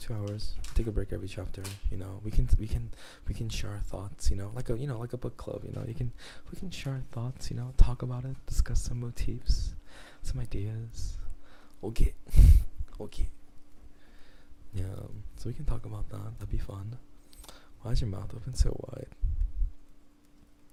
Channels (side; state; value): both; identical; correlation 1.00